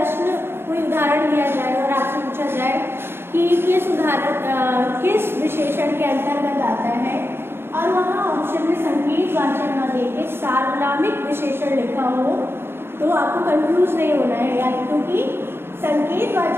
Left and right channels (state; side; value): late; left; 0.11 ms